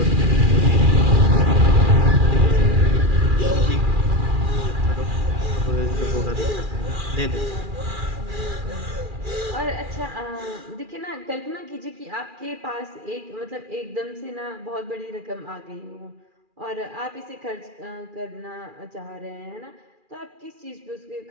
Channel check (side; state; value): left; late; 2.4 ms